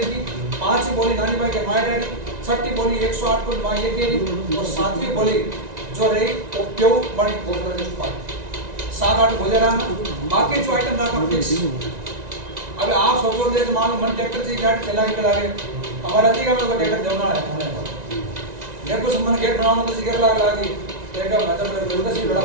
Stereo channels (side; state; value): left; late; 1.9 ms